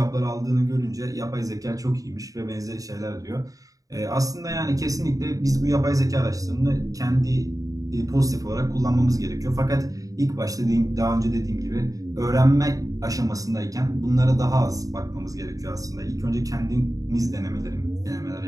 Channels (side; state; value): left; late; 0.17 ms